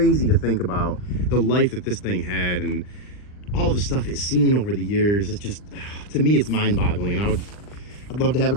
to think about the life that this thing had and all the stuff it's seen over the years. It's just, to me, it's mind-boggling, and I'd love to have a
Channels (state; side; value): late; right; 39 ms